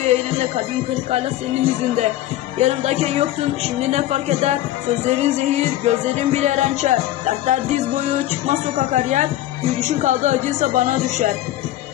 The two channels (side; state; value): right; quieter; 14.2 dB